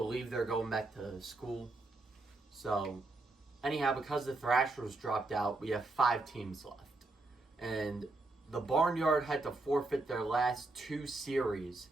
they're going back to school. So, anyhow, because the Thrashers dropped out, we have 5 teams left. And the Barnyard had to forfeit their last 2 series.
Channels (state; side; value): quieter; left; 3.0 dB